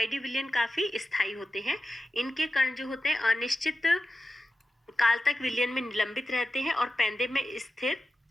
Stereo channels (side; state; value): both; normal; correlation 0.92